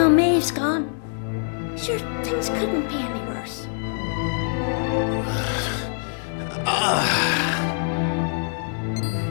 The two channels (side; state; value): right; silent; digital silence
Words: Maeve's gone. Sure, things couldn't be any worse.